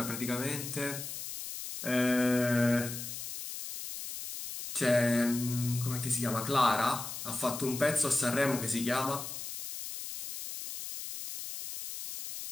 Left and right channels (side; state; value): left; noise; hiss, 8 dB below the sound